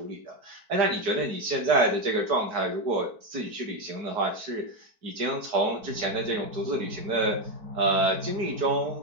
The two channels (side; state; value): left; late; 4.5 ms